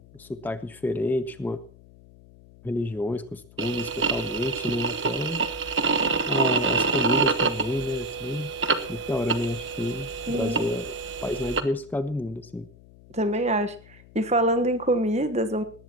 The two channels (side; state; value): left; noise; hum, 23 dB below the sound